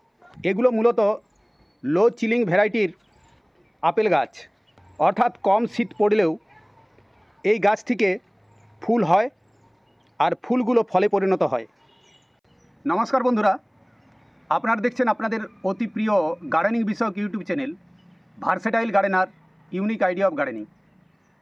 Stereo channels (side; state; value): both; identical; correlation 1.00